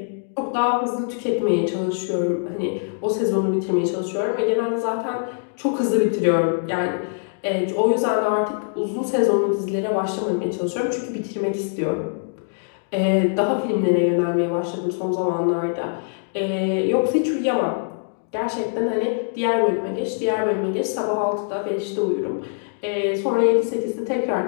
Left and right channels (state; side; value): silent; right; digital silence